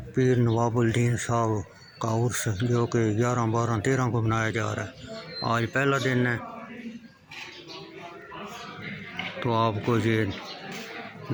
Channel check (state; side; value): identical; both; correlation 1.00